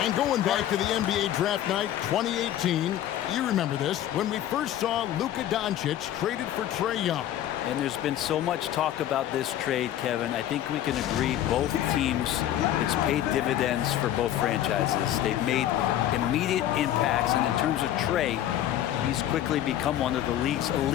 going back to the NBA draft night 2018, you remember this, when we first saw Luka Doncic traded for Trae Young. And there's been so much talk about this trade, Kevin. I think we can agree both teams, it's paid dividends for both franchises. They've made immediate impacts, and in terms of Trae, he's quickly become one of the league's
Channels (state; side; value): quieter; right; 12.0 dB